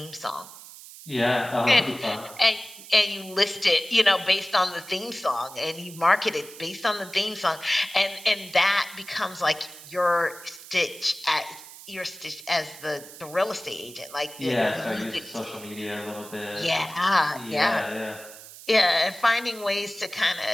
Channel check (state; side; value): noise; right; hiss, 16 dB below the sound